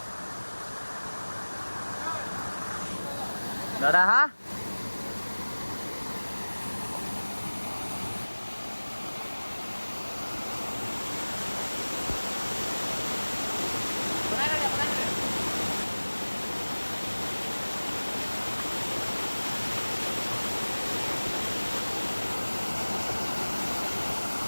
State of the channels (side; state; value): both; inverted; correlation -1.00